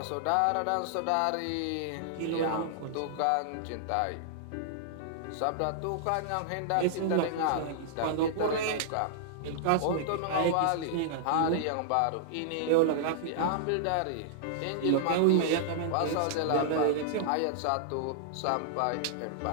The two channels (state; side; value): different; both; correlation -0.01